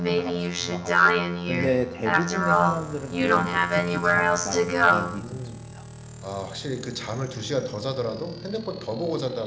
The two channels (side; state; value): both; identical; correlation 1.00